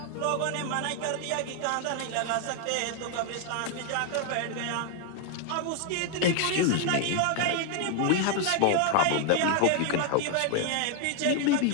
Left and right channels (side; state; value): both; different; correlation 0.00